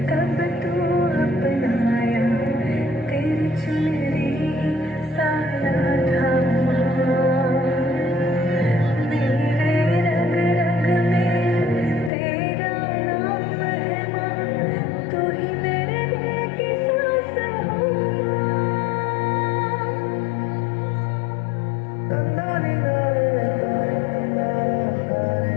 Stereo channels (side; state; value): right; drops out; at 12.1 s